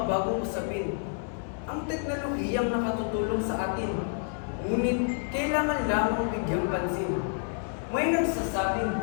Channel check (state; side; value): silent; right; 59 dB below the other